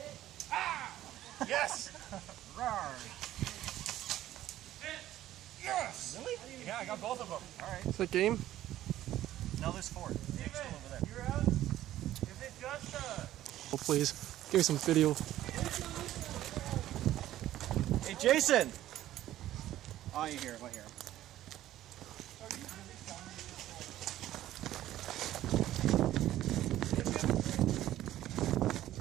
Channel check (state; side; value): quieter; left; 13.6 dB